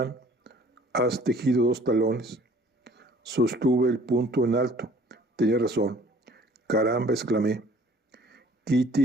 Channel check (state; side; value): normal; both; correlation 0.53